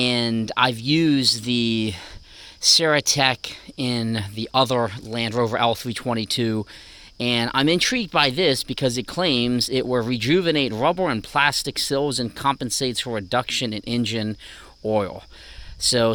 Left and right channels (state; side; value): identical; both; correlation 1.00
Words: I've used the Ceratec in the other Land Rover L322, and I'm intrigued by this because it claims it will rejuvenate rubber and plastic sills and compensates for reduction in engine oil.